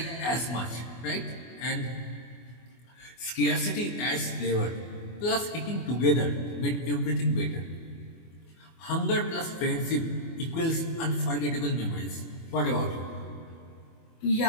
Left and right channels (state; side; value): late; right; 24 ms